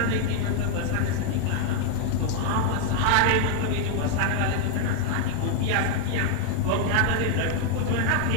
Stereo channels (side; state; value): both; different; correlation 0.00